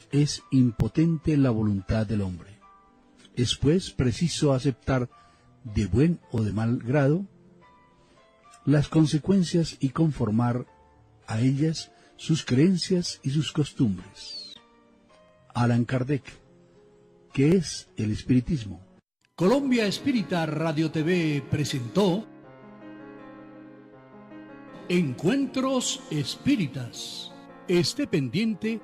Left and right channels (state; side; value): identical; both; correlation 1.00